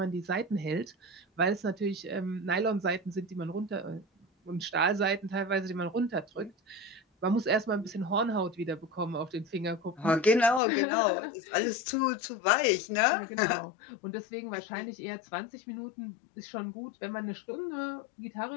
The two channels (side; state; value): right; drops out; at 10.6 s